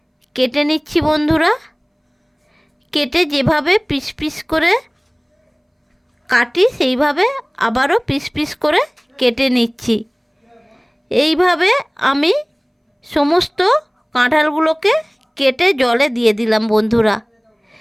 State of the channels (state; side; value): identical; both; correlation 1.00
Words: কেটে নিচ্ছি বন্ধুরা। কেটে যেভাবে পিস পিস করে কাটি সেইভাবে আবারও পিস পিস করে কেটে নিচ্ছি। এইভাবে আমি সমস্ত কাঁঠালগুলোকে কেটে জলে দিয়ে দিলাম বন্ধুরা।